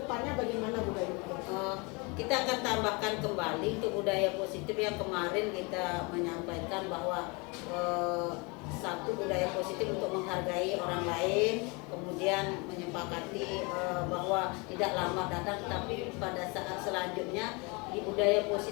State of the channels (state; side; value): quieter; right; 29.2 dB